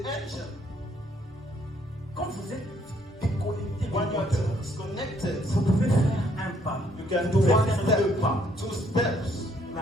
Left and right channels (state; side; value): normal; both; correlation 0.67